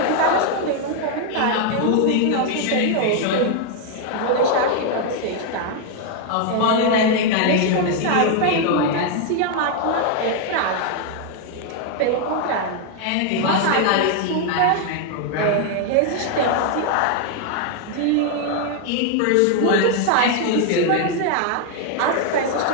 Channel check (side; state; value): both; different; correlation 0.00